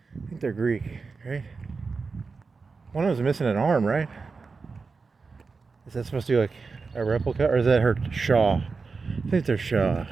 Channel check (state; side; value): quieter; left; 4.5 dB